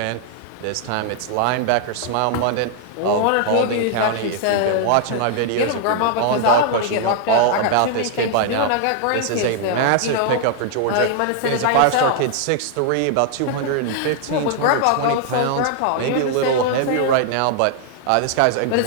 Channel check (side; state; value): both; different; correlation 0.00